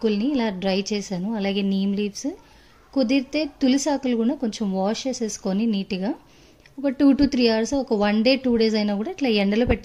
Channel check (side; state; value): both; identical; correlation 1.00